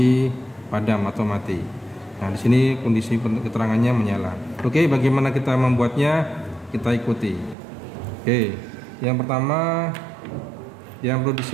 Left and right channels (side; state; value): left; drops out; at 7.6 s